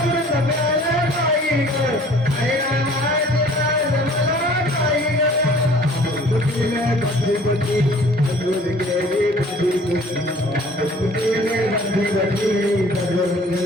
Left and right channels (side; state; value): both; normal; correlation 0.52